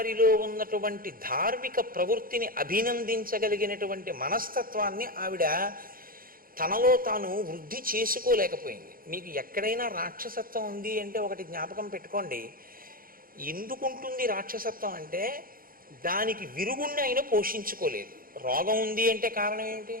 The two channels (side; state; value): left; late; 0.41 ms